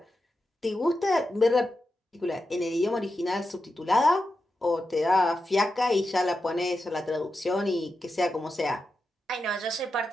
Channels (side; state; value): both; normal; correlation 0.89